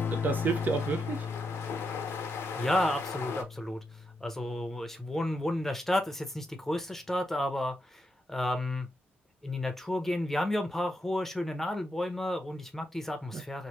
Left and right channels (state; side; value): normal; both; correlation 0.83